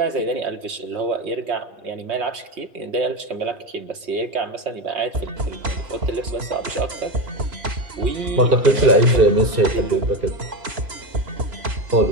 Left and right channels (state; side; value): late; left; 3.0 ms